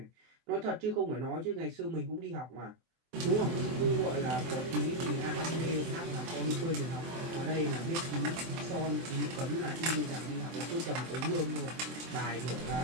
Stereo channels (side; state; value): left; late; 24 ms